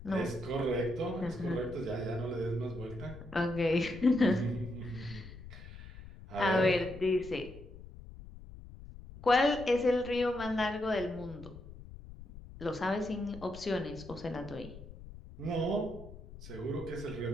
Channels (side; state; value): left; noise; rumble, 15 dB below the sound